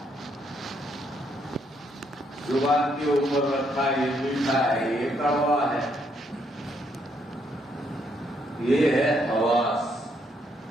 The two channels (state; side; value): normal; both; correlation 0.73